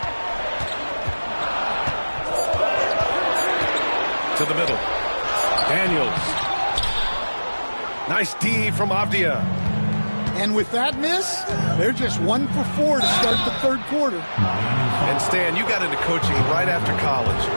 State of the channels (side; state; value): both; inverted; correlation -1.00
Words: To the middle. Daniels. Nice D from Avdia. And with that miss, they're just 1 for 4 to start the 3rd quarter. And Stan, you got into coaching right after college.